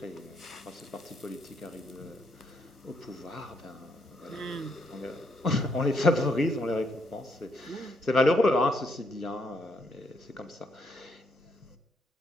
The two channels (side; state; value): both; normal; correlation 0.75